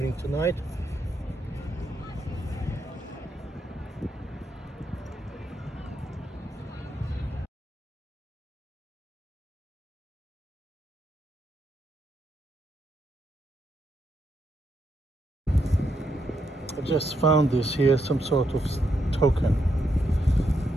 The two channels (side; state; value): both; normal; correlation 0.80